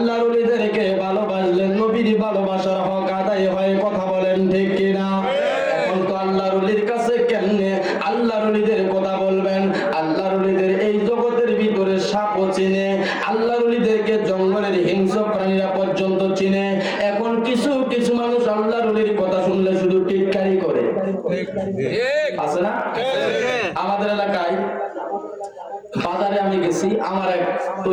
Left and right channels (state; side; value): identical; both; correlation 1.00